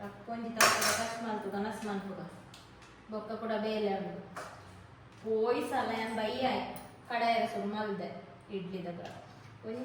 ರಕ್ಕೊಂಜಿ ತಾವುತ್ತದೆ ಕಷ್ಟ ಮಲ್ಪುಗ ನಸ್ ಮಲ್ಪುಗ ಬೊಕ್ಕ ಕೂಡ ಬೇಲೆ ಉಂಟು ಪೋಯಿ ಸಲ ಏನು ಬೈಯ ಕಡೆಯರ ಸುರು ಮಲ್ದೆ ಇಡ್ಲಿದಾಗ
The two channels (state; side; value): identical; both; correlation 1.00